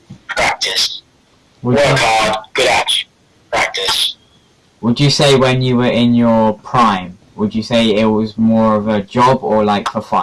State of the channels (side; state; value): both; identical; correlation 1.00